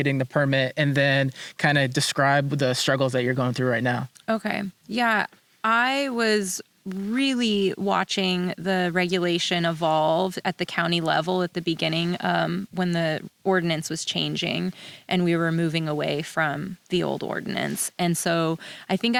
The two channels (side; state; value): both; identical; correlation 1.00